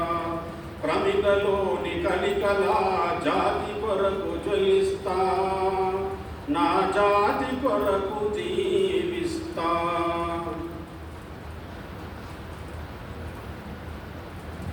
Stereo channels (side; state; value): both; identical; correlation 1.00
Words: ప్రమిదలోని కలికలా జాతి కొరకు జ్వలిస్తా నా జాతి కొరకు జీవిస్తా.